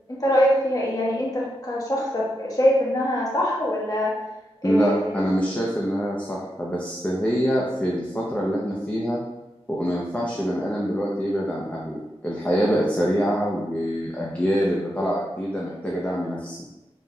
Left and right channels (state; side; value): normal; both; correlation 0.85